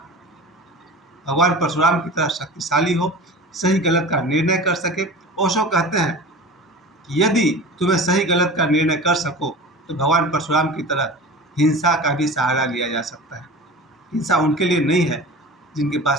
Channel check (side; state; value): both; normal; correlation 0.35